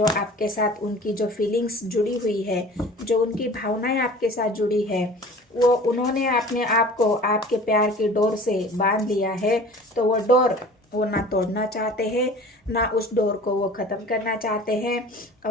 आपके साथ उनकी जो फीलिंग्स जुड़ी हुई है, जो उनकी भावनाएं आपके साथ जुड़ी है, वो उन्होंने अपने आप को आपके प्यार की डोर से बांध लिया है। तो वो डोर वो ना तोड़ना चाहते हैं, ना उस डोर को वो ख़त्म करना चाहते हैं,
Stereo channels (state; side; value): normal; both; correlation 0.43